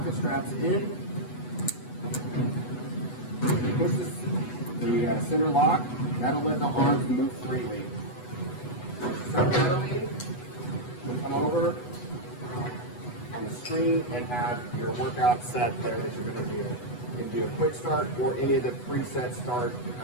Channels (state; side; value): late; right; 8.1 ms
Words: the straps in, push the center lock, that'll let the arms move freely. Start pedaling, come over on the screen and have your workout set there that you're going to do. You can do a quick start or any of the preset